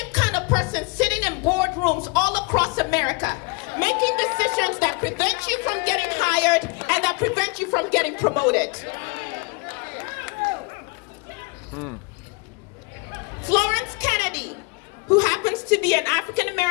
kind of person sitting in boardrooms all across America, making decisions that prevent you from getting hired and that prevent you from getting promoted. Florence Kennedy, who happens to be an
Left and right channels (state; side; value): quieter; right; 29.1 dB